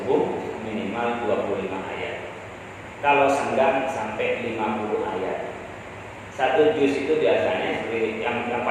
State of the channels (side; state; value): both; identical; correlation 1.00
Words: minimal 25 ayat. Kalau senggang sampai 50 ayat. 1 juz itu biasanya seperti yang